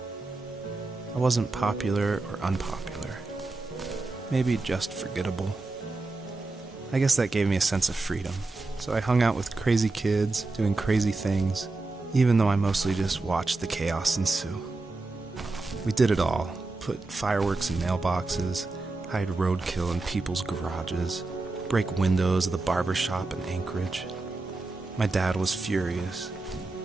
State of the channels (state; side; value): quieter; left; 3.4 dB